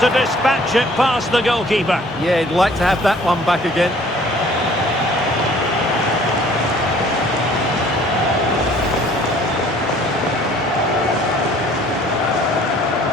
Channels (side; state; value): both; normal; correlation 0.55